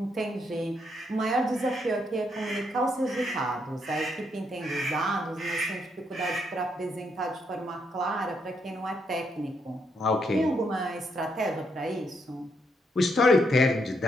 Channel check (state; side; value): normal; both; correlation 0.76